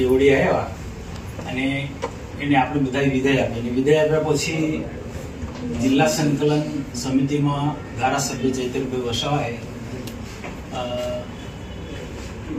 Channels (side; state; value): both; identical; correlation 1.00